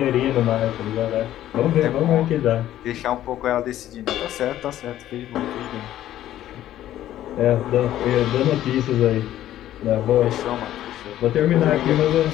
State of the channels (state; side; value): quieter; right; 12.8 dB